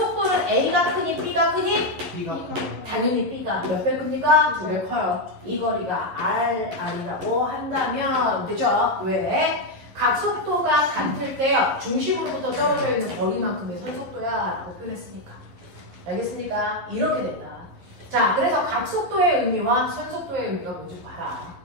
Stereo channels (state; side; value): late; left; 11 ms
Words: A가 크니 B가 크니? B가 커요. 당연히 B가 몇 배 큽니까? 2배 커요. 이 거리가 R이라고 한다면 되죠? 왜? 각속도가 같을 때요. 중심으로부터 떨어져 있는 거리만큼의 선속도야 라고 표현했으니까. 알겠습니까? 이렇게 된다. 자, 그래서 각속도의 의미와 선속도의 의미가 뭔지 봐라.